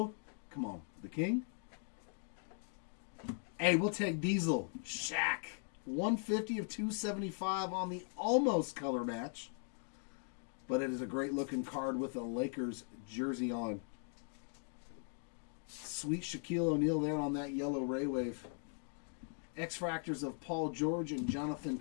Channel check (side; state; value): right; silent; 51 dB below the other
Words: Come on. The King. Hey, we'll take Diesel. Shaq. 150 of 275 on the almost color match. But it is a great looking card with a Lakers jersey on. Sweet Shaquille O'Neal there on that yellow Ray Wave. X-Fractors of Paul George and Jonathan